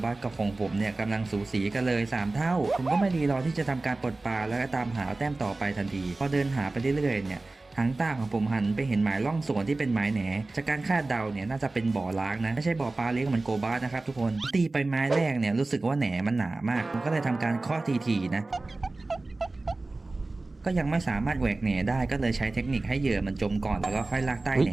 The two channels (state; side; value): quieter; left; 3.2 dB